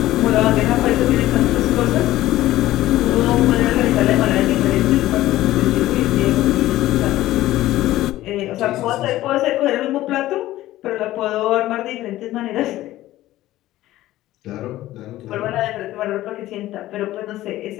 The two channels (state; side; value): quieter; right; 15.4 dB